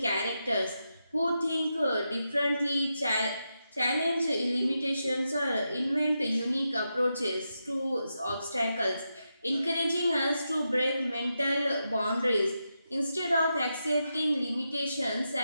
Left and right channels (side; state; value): both; inverted; correlation -0.87